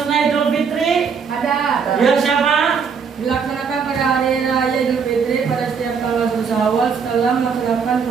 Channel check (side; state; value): left; quieter; 6.1 dB